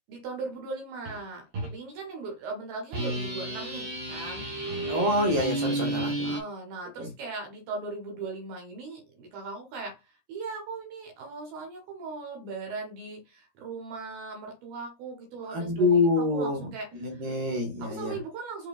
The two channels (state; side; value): late; left; 13 ms